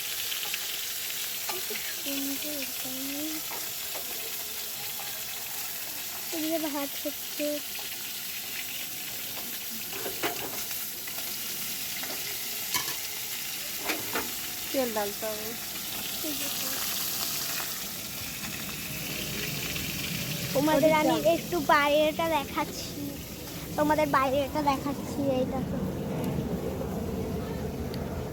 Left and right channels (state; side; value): identical; both; correlation 1.00